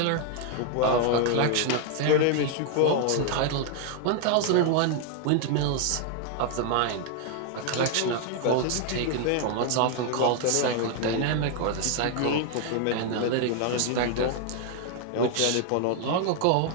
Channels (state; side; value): different; both; correlation 0.00